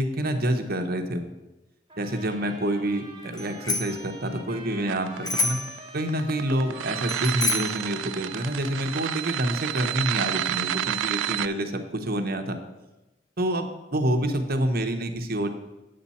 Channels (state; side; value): normal; both; correlation 0.50